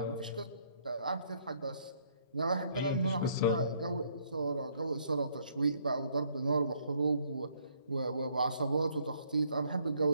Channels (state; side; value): inverted; both; correlation -0.67